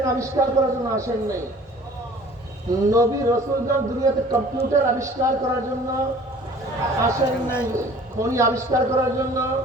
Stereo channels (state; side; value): normal; both; correlation 0.49